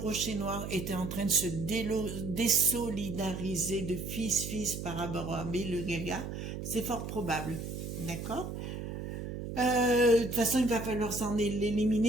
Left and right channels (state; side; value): noise; right; hum, 6 dB below the sound